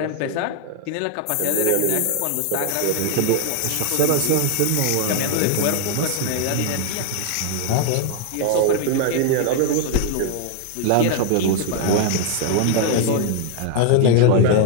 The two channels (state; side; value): different; both; correlation 0.00